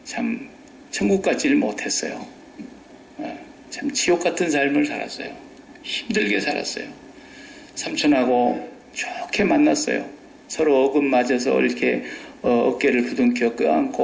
참 천국 같지를 못했어요. 참 지옥 같은 삶을 살았어요. 힘들게 살았어요. 삼촌하고 좋게 만났어요. 서로 어긋맞아서 이렇게 어깨를 부둥켜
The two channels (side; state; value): both; identical; correlation 1.00